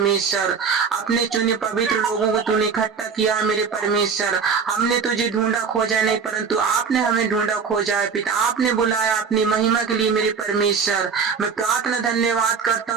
अपने चुने पवित्र लोगों को तूने इकट्ठा किया मेरे परमेश्वर। हमने तुझे ढूंढा खोजा नहीं, परंतु आपने हमें ढूंढा खोजा है पिता, आपने बुलाया अपनी महिमा के लिए मेरे परमेश्वर। मैं प्रार्थना धन्यवाद करता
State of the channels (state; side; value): quieter; left; 5.8 dB